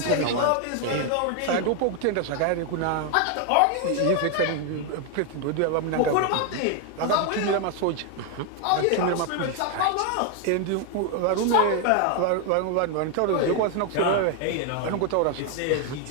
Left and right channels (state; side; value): different; both; correlation 0.01